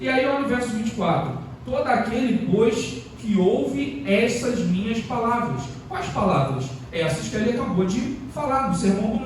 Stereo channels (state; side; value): identical; both; correlation 1.00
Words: aí olha o verso 24: todo aquele, pois, que ouve essas minhas palavras. Quais palavras? essas que ele acabou de falar no Sermão do